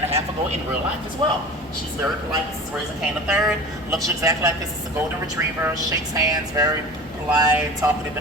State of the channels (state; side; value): noise; right; hum, 24 dB below the sound